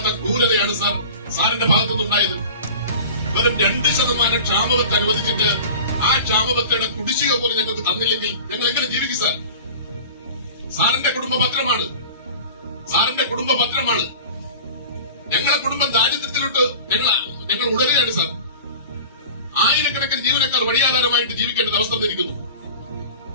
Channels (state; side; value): inverted; both; correlation -0.38